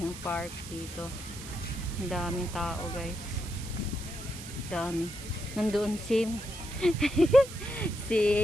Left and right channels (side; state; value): right; noise; hiss, 13 dB below the sound